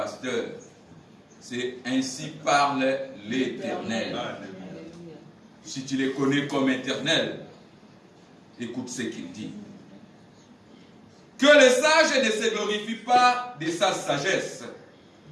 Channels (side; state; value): both; identical; correlation 1.00